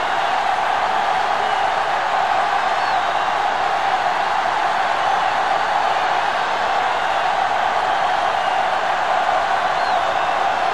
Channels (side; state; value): both; identical; correlation 1.00